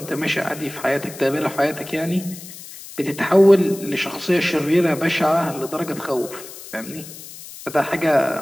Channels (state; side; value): noise; left; hiss, 15 dB below the sound